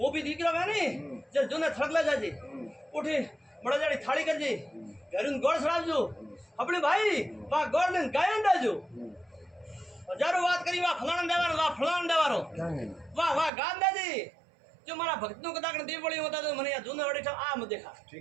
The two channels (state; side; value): drops out; left; at 13.5 s